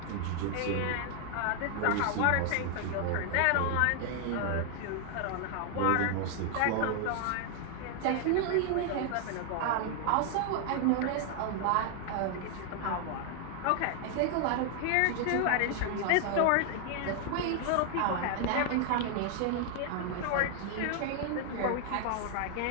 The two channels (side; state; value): both; different; correlation 0.00